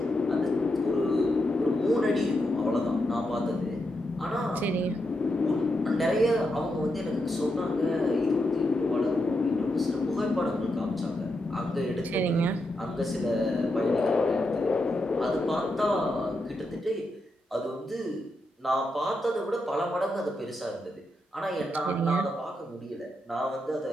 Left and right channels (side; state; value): both; normal; correlation 0.84